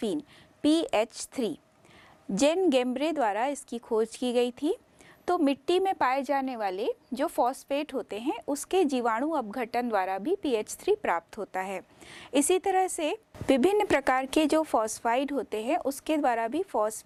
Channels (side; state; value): both; identical; correlation 1.00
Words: PH3। जेन गेम्ब्रे द्वारा इसकी खोज की गई थी। तो मिट्टी में पाए जाने वाले जो फॉस्फेट होते हैं उसके जीवाणु अपघटन द्वारा भी PH3 प्राप्त होता है। इसी तरह से विभिन्न प्रकार के जो फॉस्फाइड होते हैं उसके द्वारा भी